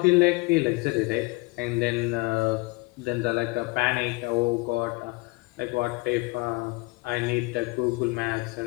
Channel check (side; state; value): right; quieter; 23.9 dB